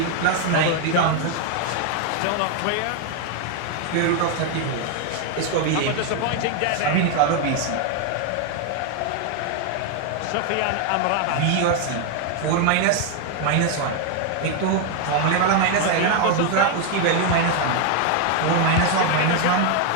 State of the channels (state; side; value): different; both; correlation 0.01